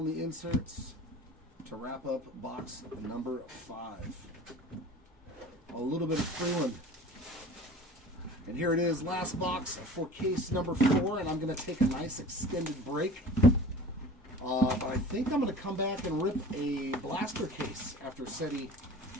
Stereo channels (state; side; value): normal; both; correlation 0.41